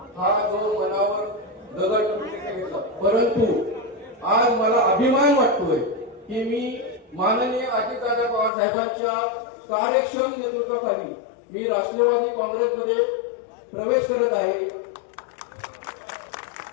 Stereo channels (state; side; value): drops out; right; at 8.5 s